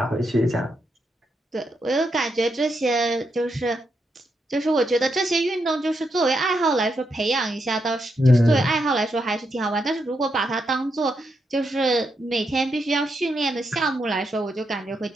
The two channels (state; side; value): normal; both; correlation 0.82